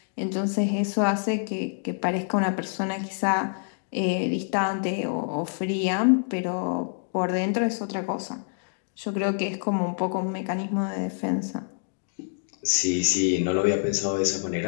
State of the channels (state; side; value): silent; right; digital silence